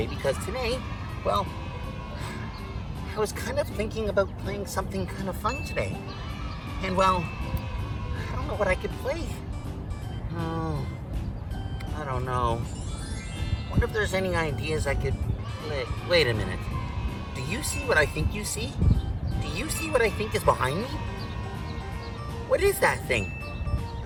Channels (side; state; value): both; identical; correlation 1.00